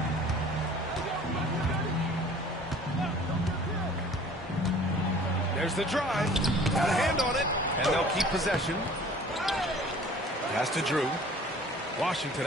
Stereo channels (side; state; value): both; normal; correlation 0.49